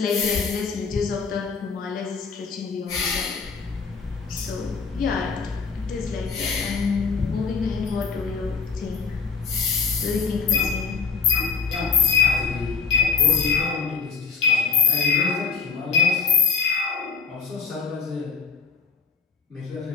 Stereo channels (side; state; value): right; quieter; 5.4 dB